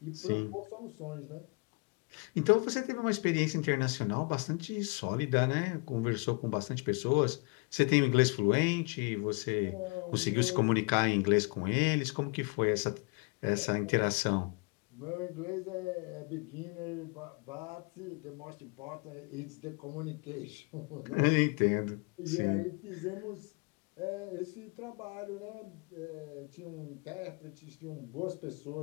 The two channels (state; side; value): quieter; right; 31.2 dB